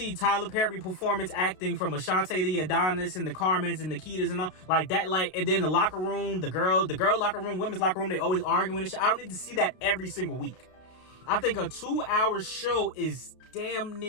Tyler Perry performance acting from Ashante the Adonis and the Carmens and Nikitas and all like that. Like, and then the locker room, the girl locker room, women's locker room, they always arguing and shit. I don't need to see that every single week. I think a 2-hour show is damn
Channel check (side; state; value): right; late; 32 ms